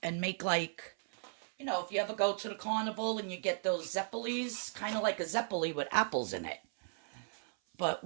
and make like, you know, if you ever go to the carnival and you get those zeppelis, kind of like a zeppeli with apples in it. But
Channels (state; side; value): silent; left; 54 dB below the other